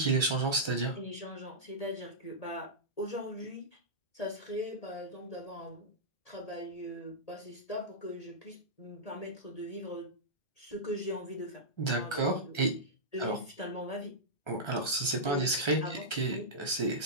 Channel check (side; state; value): right; late; 1.3 ms